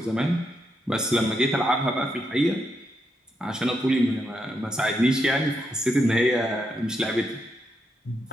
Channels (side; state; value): both; normal; correlation 0.81